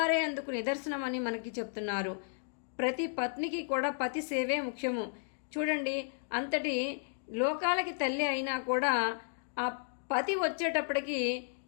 అందుకు నిదర్శనమని మనకి చెప్తున్నారు. ప్రతి పత్నికి కూడా పతి సేవే ముఖ్యము. చూడండి, అంతటి లోకాలకి తల్లి అయినా కూడా ఆ పతి వచ్చేటప్పటికి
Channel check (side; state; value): right; silent; digital silence